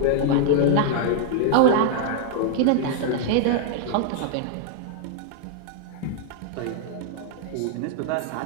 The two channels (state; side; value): different; both; correlation 0.00